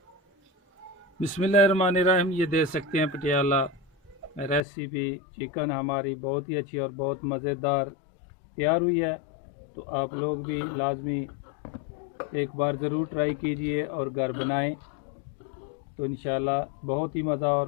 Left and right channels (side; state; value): right; drops out; at 4.7 s